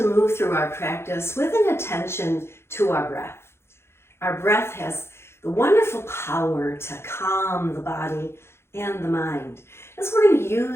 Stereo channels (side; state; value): right; late; 0.12 ms